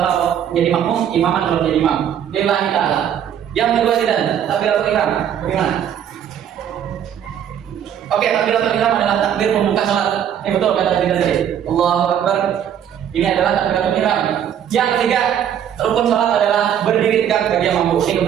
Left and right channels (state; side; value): quieter; left; 9.4 dB